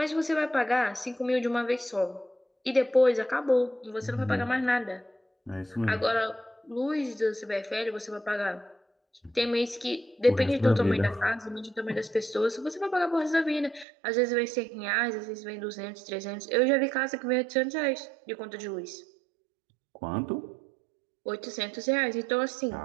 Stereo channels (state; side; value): drops out; left; at 13.9 s